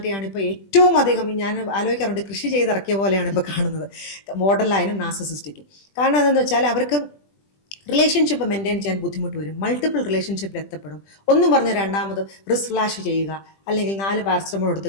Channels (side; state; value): right; late; 20 ms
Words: ഇപ്പോൾ ഏറ്റവും അധികം, ഞാൻ ആലോചിക്കാറുണ്ട്, കൃഷി ചെയ്തിറക്കിയ പോലെയാണ് ഇപ്പോൾ കാണുന്നത് ബോർഡർ ലൈനും നാർസിസിസ്റ്റിക്കും. കാരണം എന്താണെന്ന് വെച്ചാൽ അവർക്ക് റിലേഷൻഷിപ്പ് മെയിൻറ്റെയിൻ ചെയ്യാൻ ബുദ്ധിമുട്ട് വരും, മൾട്ടിപ്പിൾ റിലേഷൻഷിപ്പിൽ എത്തപ്പെടും. ഒന്നും പറഞ്ഞ് രണ്ടാമത് റിസ്ക് ഫ്ലാഷ് ചെയ്യുക, അല്ലെങ്കിൽ 4 പാരസെറ്റമോൾ എടുത്ത്